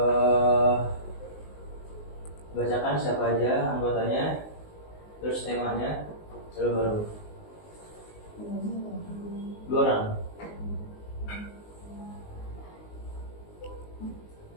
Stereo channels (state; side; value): late; right; 19 ms